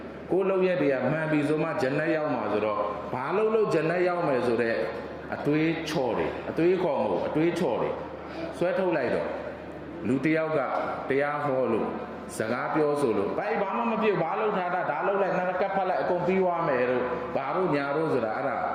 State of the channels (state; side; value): identical; both; correlation 1.00